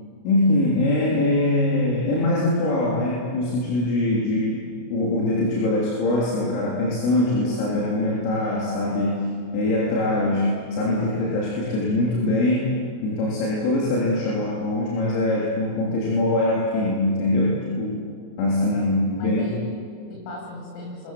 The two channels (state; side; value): late; right; 33 ms